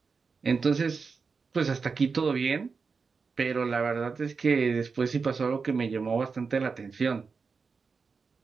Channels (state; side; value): quieter; left; 5.0 dB